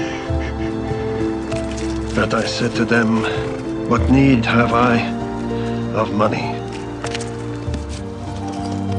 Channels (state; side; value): identical; both; correlation 1.00